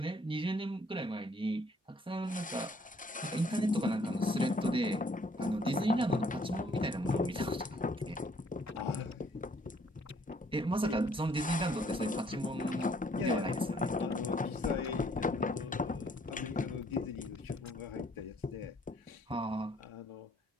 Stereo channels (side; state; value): both; normal; correlation 0.63